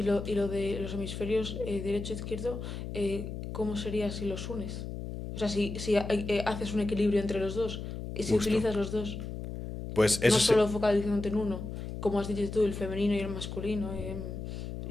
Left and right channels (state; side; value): noise; left; hum, 7 dB below the sound